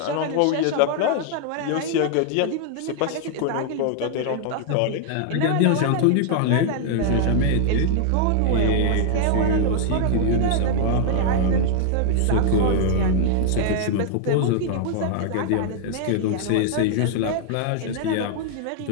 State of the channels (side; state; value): both; different; correlation 0.00